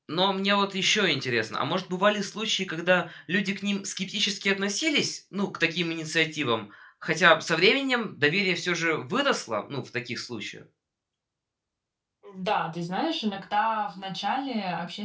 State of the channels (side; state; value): both; identical; correlation 1.00